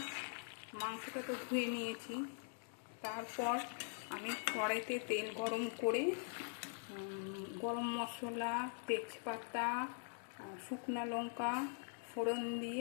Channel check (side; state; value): right; silent; digital silence